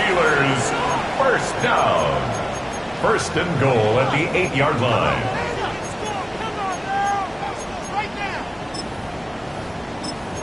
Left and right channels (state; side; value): noise; right; hum, 26 dB below the sound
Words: first down. 1st and goal at the 8-yard line.